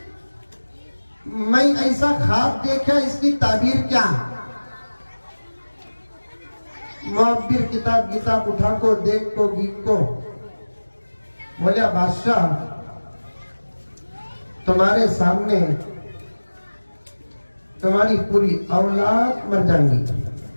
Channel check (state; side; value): inverted; both; correlation -1.00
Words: मैं ऐसा ख्वाब देखा, इसकी ताबीर क्या? मुअब्बिर किताब उठा को देख को गीत को बोलिया, बादशाह तुम्हारे सामने तुम्हारी पूरी औलाद मर जाएंगी।